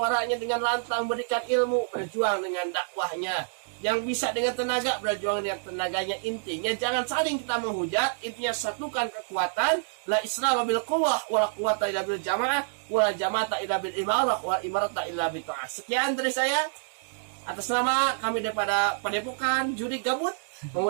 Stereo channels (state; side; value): silent; left; digital silence